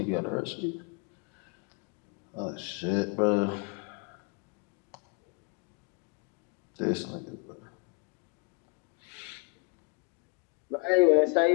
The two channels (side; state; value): right; quieter; 31.6 dB